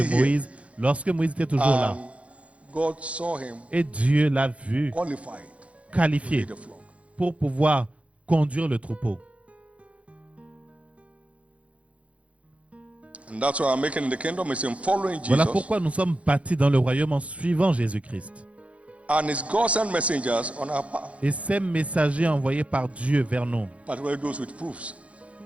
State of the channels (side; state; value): left; late; 0.064 ms